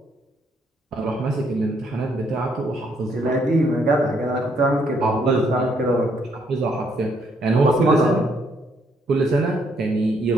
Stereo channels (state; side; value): normal; both; correlation 0.71